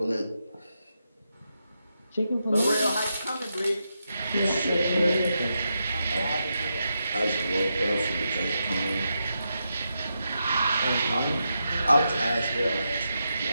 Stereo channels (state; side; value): inverted; both; correlation -0.85